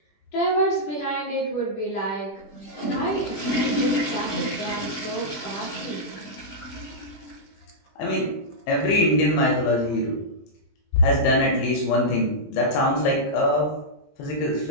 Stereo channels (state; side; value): late; right; 20 ms